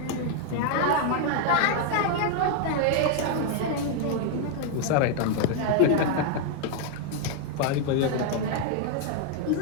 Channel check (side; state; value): both; different; correlation 0.00